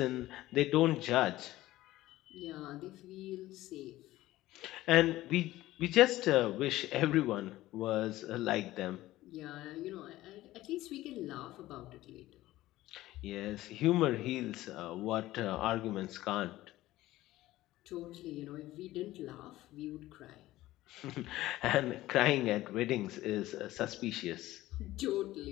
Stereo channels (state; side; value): quieter; right; 16.3 dB